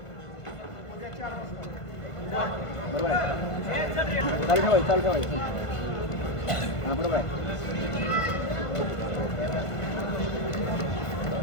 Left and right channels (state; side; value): late; right; 1.5 ms